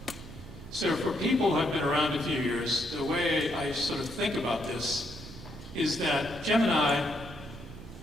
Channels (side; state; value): both; normal; correlation 0.75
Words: So for people who have been around a few years, the way I sort of think about this is that Gemini